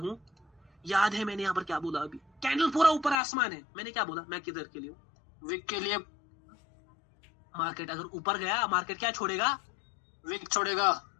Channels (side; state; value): right; drops out; at 3.2 s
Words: याद है मैंने यहाँ पर क्या बोला, अभी कैंडल पूरा ऊपर आसमान है, मैंने क्या बोला, मैं किधर के लिए हूँ, विक के लिए। मार्केट अगर ऊपर गया, मार्केट क्या छोड़ेगा, विक छोड़ेगा,